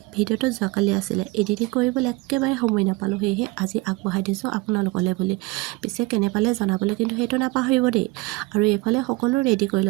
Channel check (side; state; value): left; quieter; 22.5 dB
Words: ভিডিঅ'টো যোৱাকালি আছিলে, এডিটিং কৰিবলৈ একেবাৰে সময় নাপালোঁ। সেয়েহে আজি আগবঢ়াই দিছোঁ আপোনালোকলৈ বুলি। পিছে কেনে পালে জনাবলৈ কিন্তু সেইটো নাপাহৰিব দেই। আৰু এইফালে সকলো ৰেডি কৰি